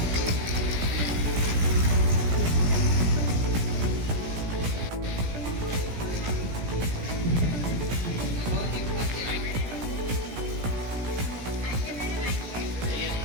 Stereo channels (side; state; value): left; late; 17 ms